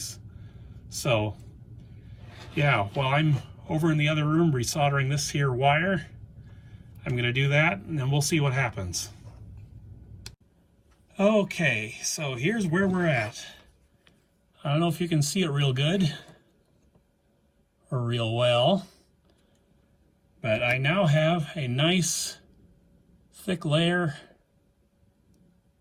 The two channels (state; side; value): identical; both; correlation 1.00